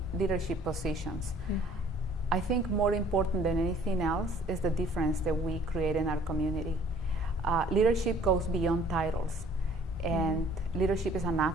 leadership positions. I think more important than anything else is the difference that we create in our community. Leadership goes beyond titles, and leadership is an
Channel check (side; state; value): both; normal; correlation 0.55